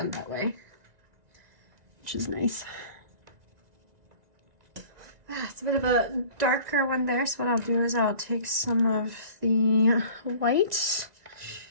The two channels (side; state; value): left; late; 1.9 ms